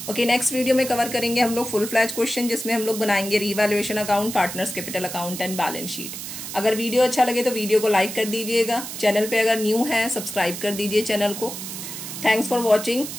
ओके, नेक्स्ट वीडियो में कवर करेंगे हम लोग फुल फ्लैज क्वेश्चन, जिसमें हम लोग बनाएंगे revaluation account, partners capital account and balance sheet. अगर वीडियो अच्छा लगे तो वीडियो को लाइक कर दीजिएगा। चैनल पे अगर न्यू है सब्सक्राइब कर दीजिए चैनल को। थैंक्स फॉर वॉचिंग,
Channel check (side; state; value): right; noise; hiss, 8 dB below the sound